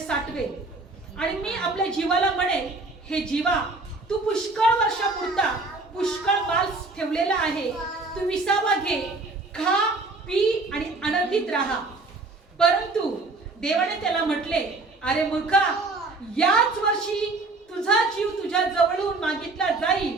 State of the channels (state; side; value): quieter; left; 3.4 dB